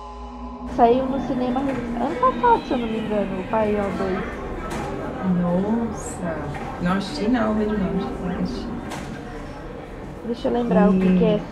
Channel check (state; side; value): identical; both; correlation 1.00